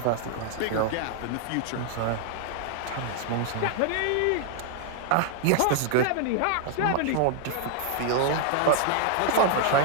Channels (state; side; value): different; both; correlation 0.00